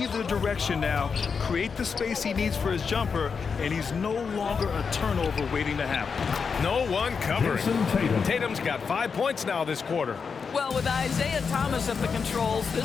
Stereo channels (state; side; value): quieter; right; 5.7 dB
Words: direction now, create the space he needs for his jumper, and he's no longer a turnover waiting to happen. No one covering. Tatum's got 5 points now this quarter. Well, with Isaiah Thomas at the controls,